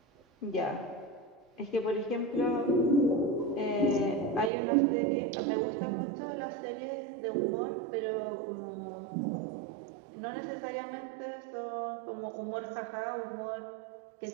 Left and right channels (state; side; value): drops out; left; at 4.5 s